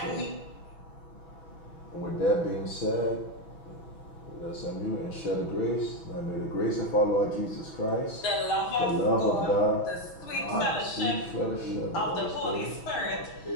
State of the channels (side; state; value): right; late; 6.1 ms